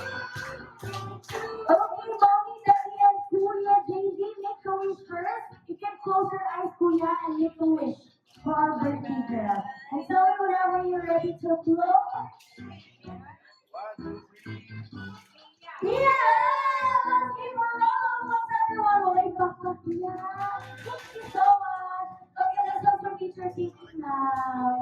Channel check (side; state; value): both; identical; correlation 1.00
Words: Okay, mommy, daddy, and Kuya, JV, make a wish first. You can close your eyes, Kuya, and make a wish for our birthday girl. And tell me whenever you're ready to blow. Yeah! Let's give a round of applause, everyone. Wave back to Kuya. Thank you so much. Okay, let's go for teacher seating